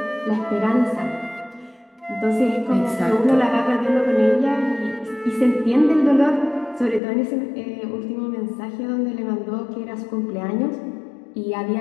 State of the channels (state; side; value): drops out; right; at 7.0 s